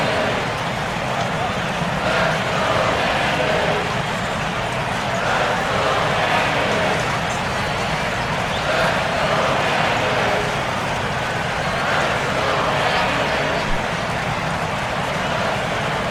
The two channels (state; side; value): identical; both; correlation 1.00